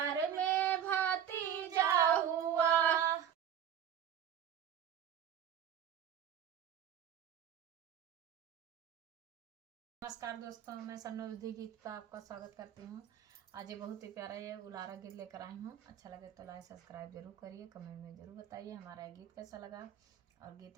में भतीजा हुआ। नमस्कार दोस्तों, मैं सन्नोधी गीत का आपका स्वागत करती हूँ। आज ये बहुत ही प्यारा ये उलारा गीत लेकर आई हूँ। अच्छा लगे तो लाइक सब्सक्राइब जरूर करिए, कमेंट में जरूर बताइए हमारा ये गीत कैसा लगा। और गीत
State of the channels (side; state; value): left; quieter; 9.4 dB